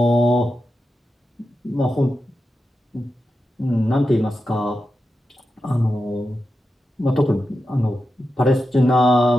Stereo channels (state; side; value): normal; both; correlation 0.90